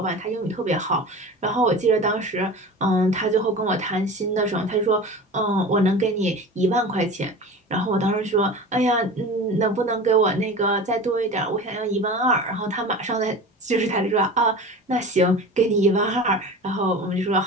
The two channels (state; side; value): normal; both; correlation 0.34